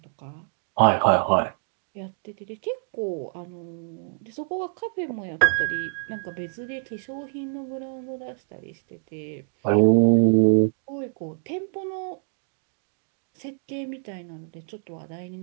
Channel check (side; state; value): left; silent; 61 dB below the other